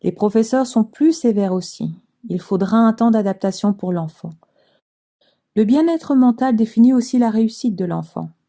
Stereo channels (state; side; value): identical; both; correlation 1.00